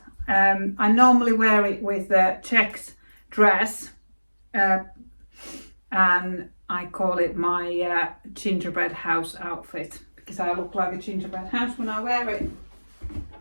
I normally wear it with a checked dress, and I call it my gingerbread house outfit because I look like a gingerbread house when I wear it.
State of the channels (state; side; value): inverted; both; correlation -1.00